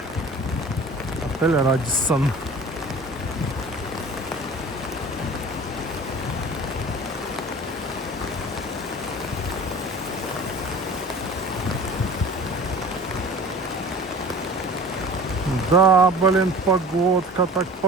Отель Радиссон. Да, блин, погодка, так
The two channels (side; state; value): both; normal; correlation 0.41